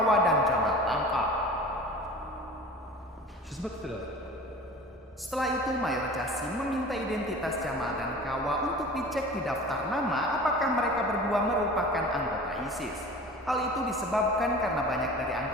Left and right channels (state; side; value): normal; both; correlation 0.40